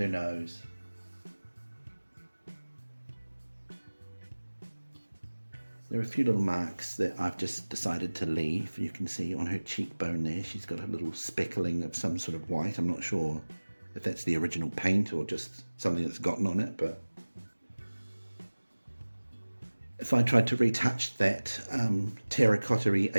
her nose. There are a few little marks that I've just decided to leave. You can see on her cheekbone there, she's got a little speckling of some sort of white. I'm not sure if that's the original paint or just something that's gotten on it, but if I tried to retouch that terracotta-y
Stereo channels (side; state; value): both; inverted; correlation -1.00